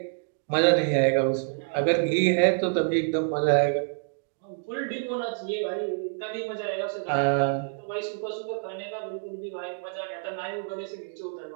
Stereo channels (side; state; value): left; silent; digital silence